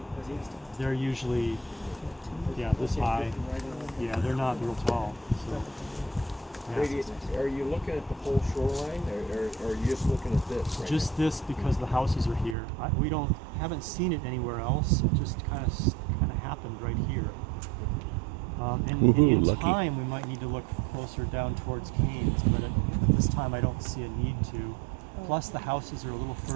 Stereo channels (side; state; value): left; drops out; at 12.6 s